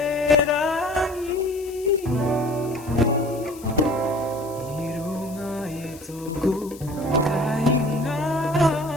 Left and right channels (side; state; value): left; noise; hiss, 19 dB below the sound